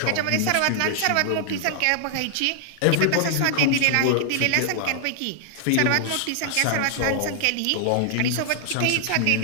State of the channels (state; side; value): different; both; correlation 0.00